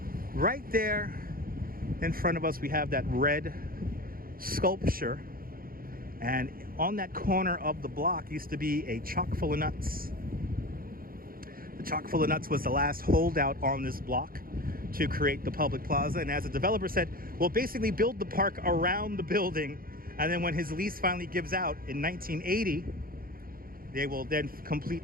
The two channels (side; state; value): left; late; 0.42 ms